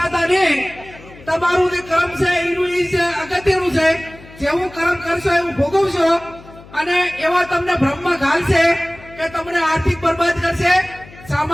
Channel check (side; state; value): left; noise; hum, 20 dB below the sound